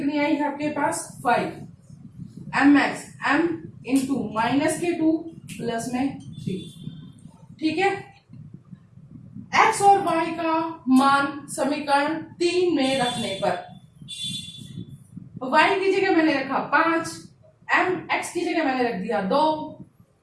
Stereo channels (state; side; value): identical; both; correlation 1.00